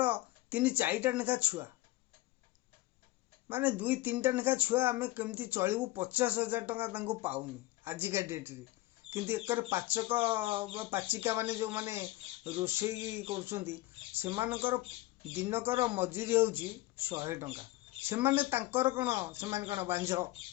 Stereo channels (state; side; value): quieter; right; 18.1 dB